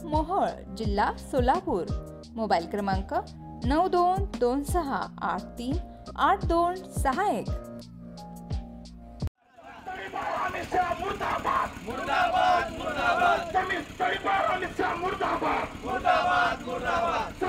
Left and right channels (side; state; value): both; identical; correlation 1.00